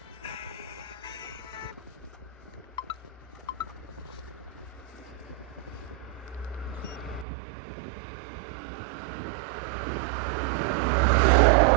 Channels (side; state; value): left; drops out; at 7.2 s